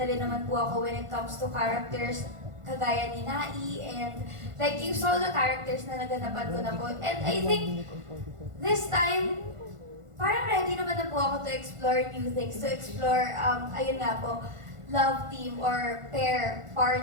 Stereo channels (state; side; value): late; left; 1.4 ms